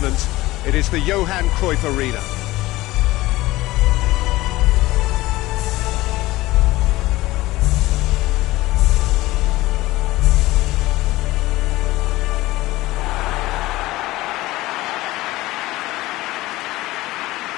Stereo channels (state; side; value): quieter; right; 18.4 dB